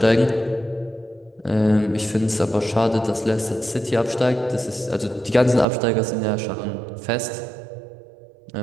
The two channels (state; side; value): drops out; left; at 5.7 s